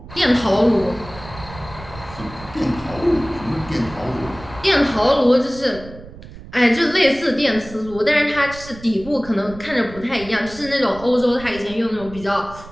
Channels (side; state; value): right; noise; rumble, 16 dB below the sound